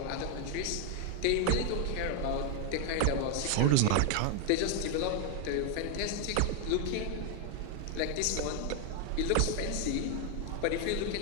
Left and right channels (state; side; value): different; both; correlation 0.00